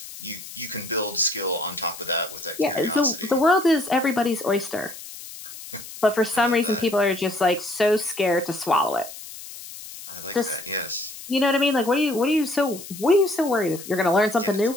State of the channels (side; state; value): left; noise; hiss, 14 dB below the sound